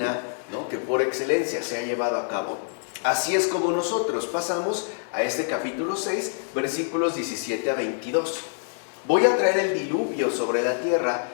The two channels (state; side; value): silent; right; digital silence